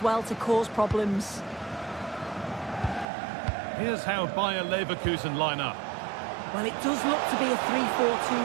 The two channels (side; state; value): left; drops out; at 3.1 s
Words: to cause problems. Here's how Bayer Leverkusen line up. Well, it does look to be a